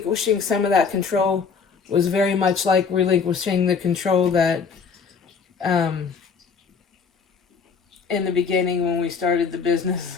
some of that control was very much like relinquishing the control that in the beginning when we started the business,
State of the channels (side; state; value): right; quieter; 5.7 dB